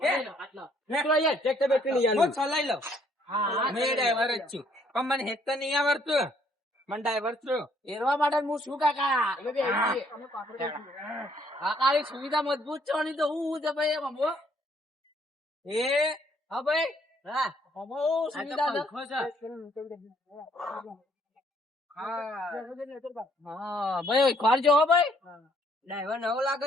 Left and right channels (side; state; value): both; normal; correlation 0.66